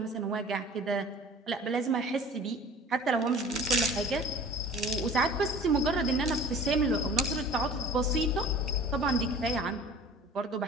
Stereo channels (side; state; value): both; normal; correlation 0.45